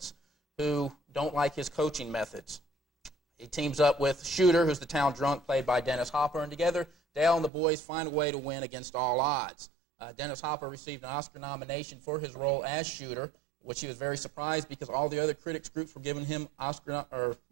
who don't like his coaching methods. He teams up with Shooter, who's the town drunk, played by Dennis Hopper, and together, Dale and the boys find a way to win against all odds. Dennis Hopper received an Oscar nomination for his role as Shooter, which he was very surprised because all the other critics groups were giving him Oscar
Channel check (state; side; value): drops out; left; at 7.5 s